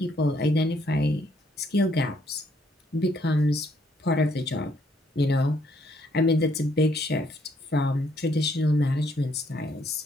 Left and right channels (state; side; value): normal; both; correlation 0.69